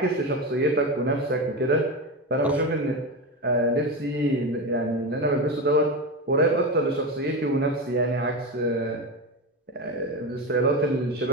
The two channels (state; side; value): normal; both; correlation 0.19